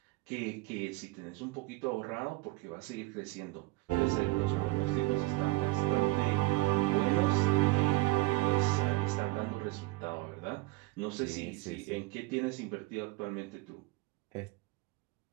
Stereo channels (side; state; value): left; quieter; 20.7 dB